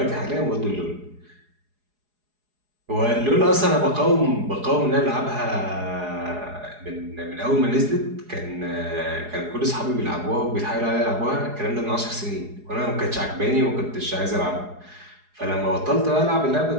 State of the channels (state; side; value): late; left; 4.8 ms